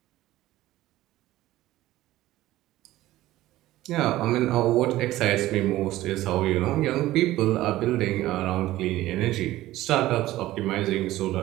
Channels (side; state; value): left; quieter; 15.9 dB